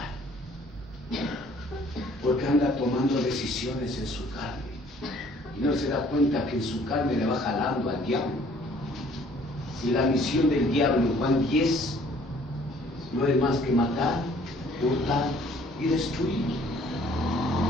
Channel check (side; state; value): both; normal; correlation 0.57